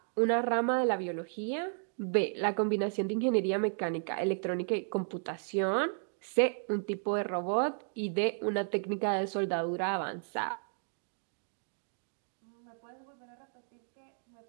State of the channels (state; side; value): silent; left; digital silence